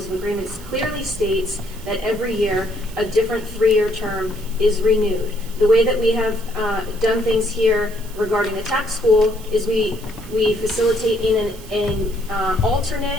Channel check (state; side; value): noise; right; hiss, 19 dB below the sound